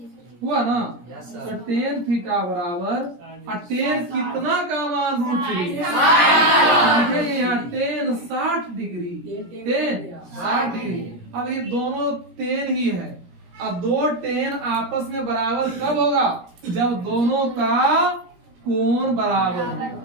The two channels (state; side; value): late; left; 17 ms